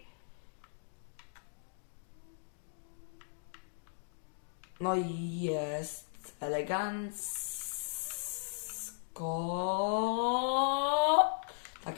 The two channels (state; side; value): silent; right; digital silence